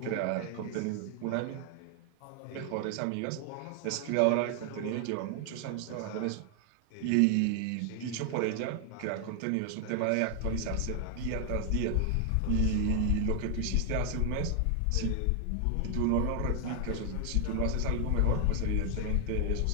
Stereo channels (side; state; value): both; different; correlation 0.00